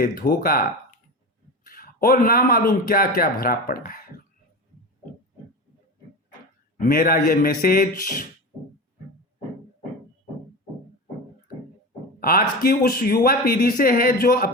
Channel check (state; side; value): normal; both; correlation 0.26